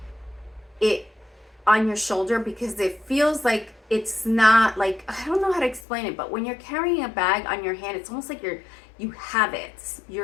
it on your shoulder, because it feels like it's not like, I don't know how to explain it, but when you're carrying a bag on your hand, it's almost like you have it.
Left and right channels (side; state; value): right; drops out; at 5.8 s